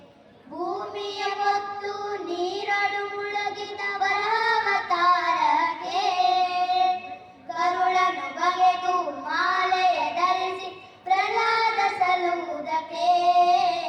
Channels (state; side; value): identical; both; correlation 1.00